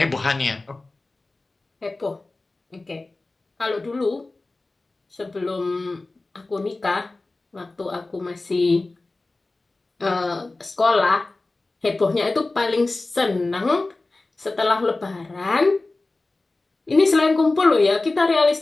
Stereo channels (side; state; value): right; quieter; 3.2 dB